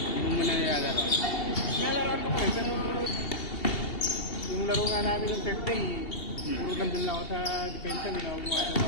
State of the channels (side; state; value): right; late; 2.7 ms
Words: mo muna nilalaro. Nalaroan ko eh, pero yung laro nga namin ng Thursday, puro nandun lang ako sa defensa, hindi na ako gumagawa